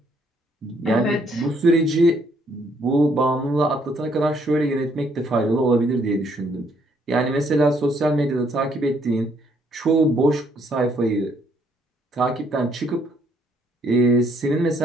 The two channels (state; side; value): normal; both; correlation 0.68